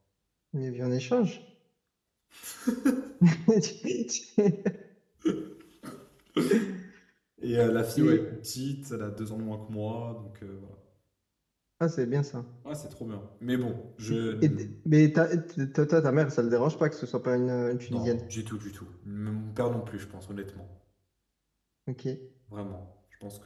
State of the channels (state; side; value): identical; both; correlation 1.00